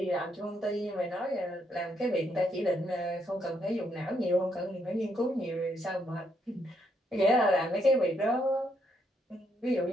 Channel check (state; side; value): normal; both; correlation 0.75